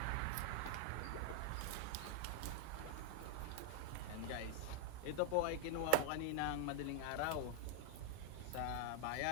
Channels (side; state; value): both; different; correlation -0.01